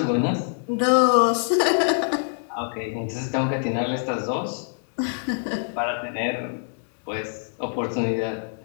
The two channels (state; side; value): silent; right; digital silence